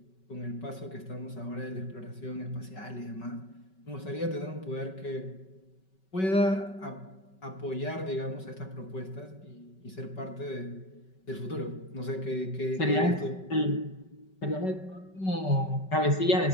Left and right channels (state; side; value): late; right; 5.3 ms